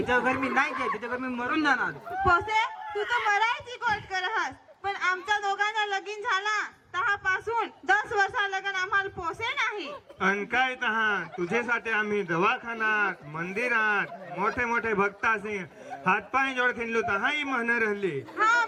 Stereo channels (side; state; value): both; identical; correlation 1.00